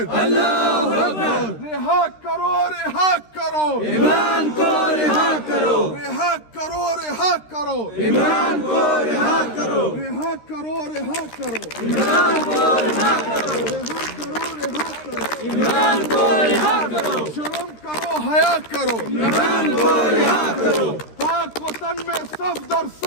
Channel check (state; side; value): late; right; 13 ms